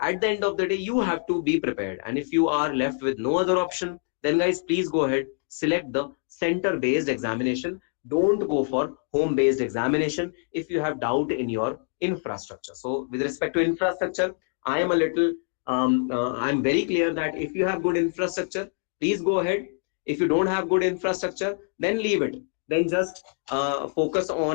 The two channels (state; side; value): silent; right; 58 dB below the other